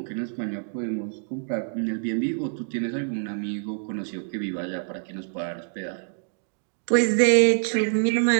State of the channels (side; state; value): left; silent; digital silence